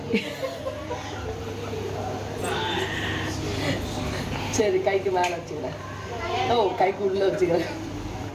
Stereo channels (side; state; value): both; identical; correlation 1.00